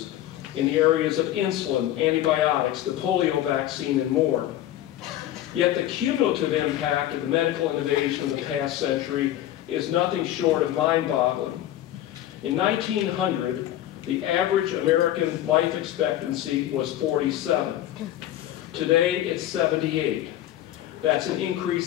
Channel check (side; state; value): right; quieter; 13.1 dB